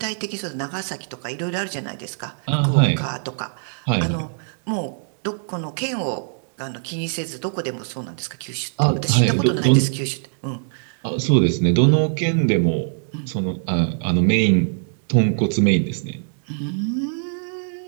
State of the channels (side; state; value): left; silent; digital silence